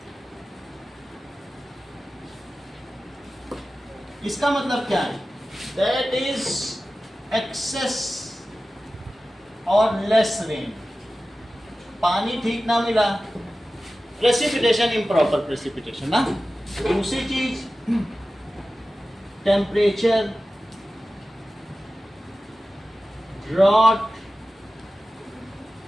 इसका मतलब क्या है? दैट इज एक्सेस और लेस रेन, पानी ठीक ना मिला, प्रेसिपिटेशन, इम्प्रॉपर प्रेसिपिटेशन ना। दूसरी चीज temperature, drought,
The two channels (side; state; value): both; normal; correlation 0.95